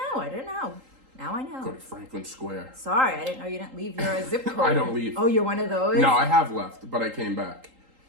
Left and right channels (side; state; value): left; late; 3.8 ms